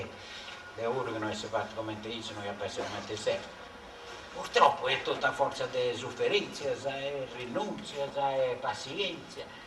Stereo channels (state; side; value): identical; both; correlation 1.00